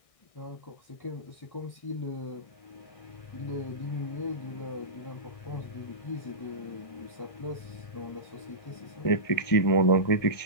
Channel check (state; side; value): late; right; 1.6 ms